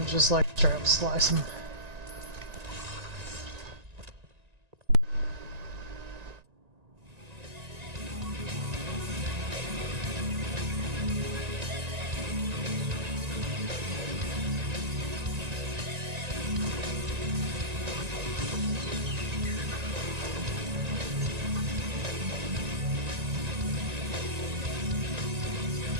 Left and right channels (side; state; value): left; late; 1.9 ms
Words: just like straight up slice him.